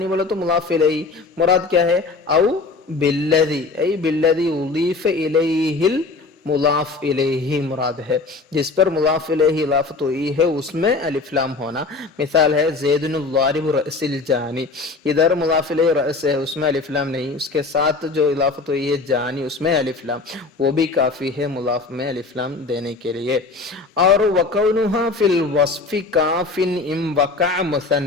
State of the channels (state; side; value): quieter; right; 3.9 dB